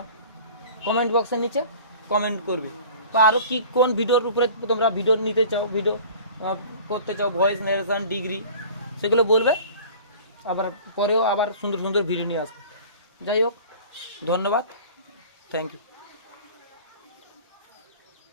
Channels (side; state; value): both; inverted; correlation -0.44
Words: কমেন্ট বক্সের নিচে কমেন্ট করবে, বা আরও কি কোন ভিডিওর উপরে তোমরা ভিডিও নিতে চাও, ভিডিও করতে চাও, ভয়েস নারেশন, ডিগ্রি, সেগুলো বলবে। আবার পরেও আবার সুন্দর সুন্দর ভিডিও নিয়ে আসবে। যাই হোক, ধন্যবাদ, থ্যাংক ইউ।